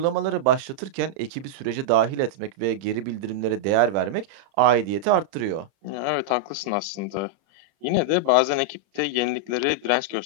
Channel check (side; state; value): left; late; 30 ms